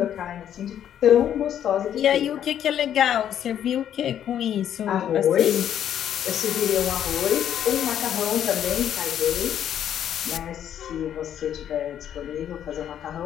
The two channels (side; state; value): right; quieter; 10.0 dB